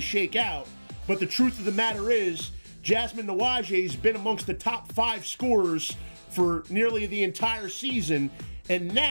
shake out. But the truth of the matter is, Jasmine Nawaje has been amongst the top 5 scorers for nearly the entire season, and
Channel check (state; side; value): inverted; both; correlation -1.00